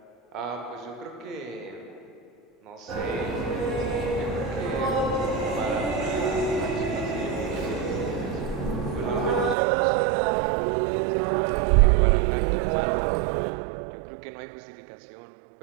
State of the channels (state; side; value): drops out; left; at 9.6 s